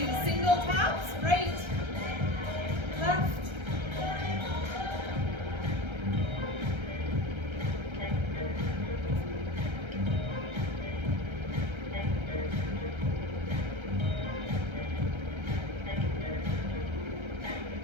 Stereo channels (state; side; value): late; left; 1.3 ms